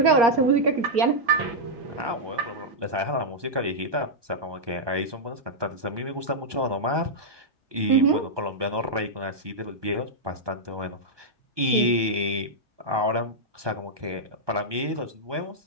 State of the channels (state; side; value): late; left; 1.2 ms